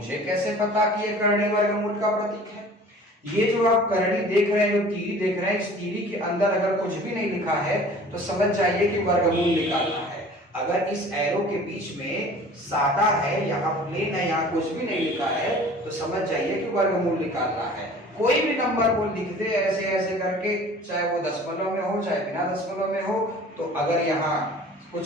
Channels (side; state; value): both; normal; correlation 0.46